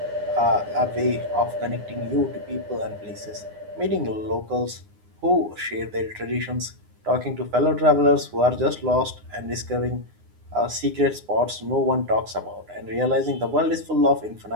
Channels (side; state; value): left; late; 9.7 ms